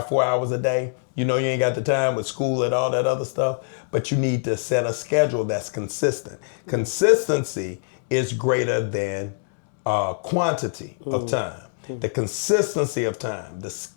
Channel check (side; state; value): right; silent; digital silence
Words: 4 hours a day, you ain't got the time with school and all that other stuff, but you need to set a schedule that's consistent. Consistency is greater than quantity of time. The consistency of time, the